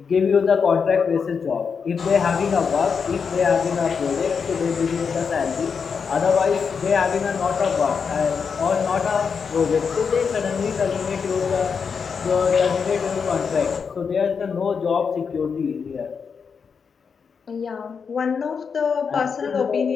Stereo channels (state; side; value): quieter; right; 6.0 dB